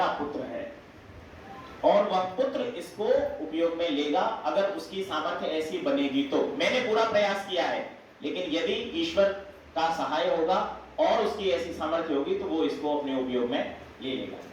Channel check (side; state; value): both; identical; correlation 1.00